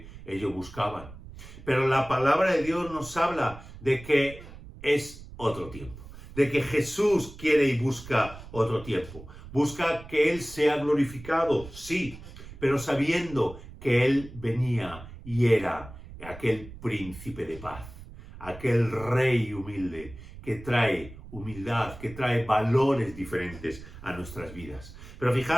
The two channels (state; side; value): noise; right; rumble, 16 dB below the sound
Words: ellos buscaban. Pero la palabra de Dios nos habla de que es otro tiempo, de que Jesús quiere y busca otro tiempo. Busca que Él sea glorificado, sí, pero sabiendo que Él venía y era aquel príncipe de paz, aquel rey humilde que trae humildad, que trae valores diferentes a nuestras vidas. Pero